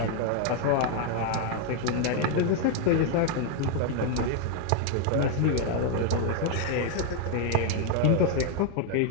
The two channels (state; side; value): different; both; correlation 0.01